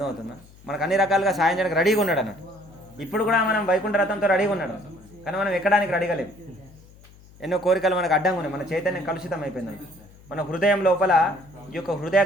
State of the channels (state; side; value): noise; left; hum, 24 dB below the sound